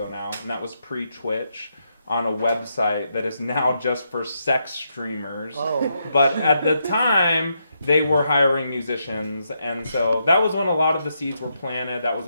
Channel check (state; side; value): inverted; both; correlation -0.81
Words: now. And that was pre-Twitch, on a website that is now just for sex streamers. Oh. But at the time, they were hiring musicians, and so that was when a lot of the seeds were planted. That was